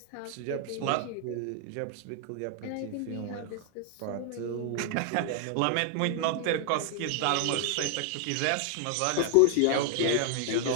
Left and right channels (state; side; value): different; both; correlation 0.00